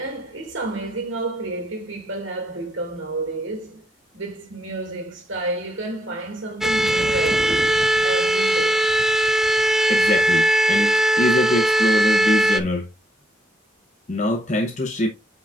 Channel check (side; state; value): both; normal; correlation 0.76